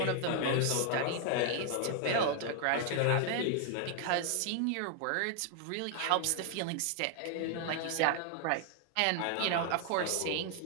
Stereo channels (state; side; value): different; both; correlation 0.00